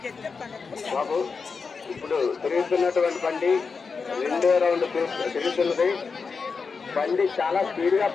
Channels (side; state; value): right; quieter; 5.1 dB